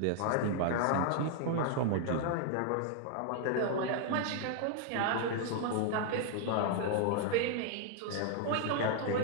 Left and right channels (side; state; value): both; different; correlation 0.00